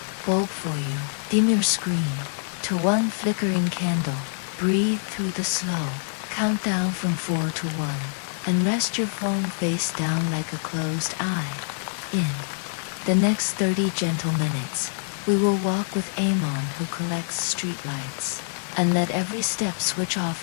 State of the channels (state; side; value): silent; right; digital silence